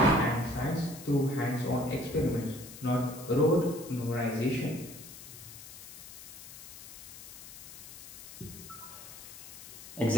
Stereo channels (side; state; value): left; noise; hiss, 14 dB below the sound